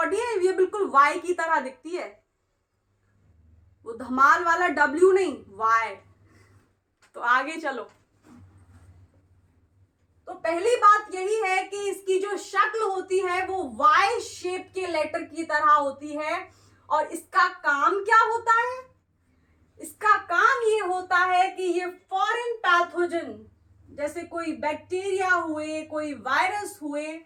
है ये बिल्कुल वाई की तरह दिखती है। वो धमाल वाला डब्ल्यू नहीं, वाई। तो आगे चलो। तो पहली बात यही है कि इसकी जो शक्ल होती है वो वाई शेप के लेटर की तरह होती है। और इसका काम क्या होता है? इसका काम ये होता है कि ये फॉरेन पैथोजन जैसे कोई बैक्टीरिया हुए, कोई वायरस हुए,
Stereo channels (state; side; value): identical; both; correlation 1.00